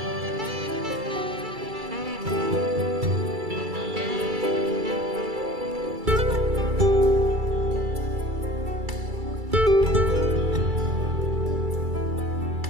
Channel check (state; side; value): late; left; 2.3 ms